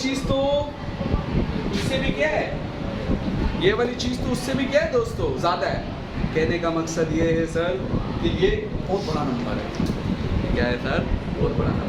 तो उससे भी क्या है? ये वाली चीज़ तो उससे भी क्या है दोस्तों? ज़्यादा है। कहने का मकसद ये है सर कि ये बहुत बड़ा नंबर है। क्या है सर? बहुत बड़ा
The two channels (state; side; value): identical; both; correlation 1.00